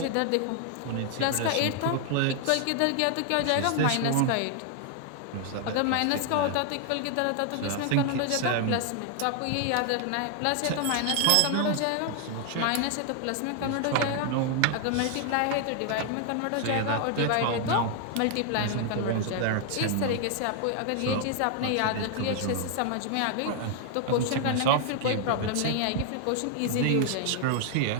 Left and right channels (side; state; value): both; different; correlation 0.00